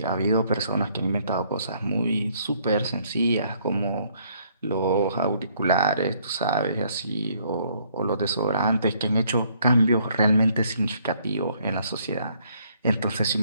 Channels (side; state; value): both; inverted; correlation -0.66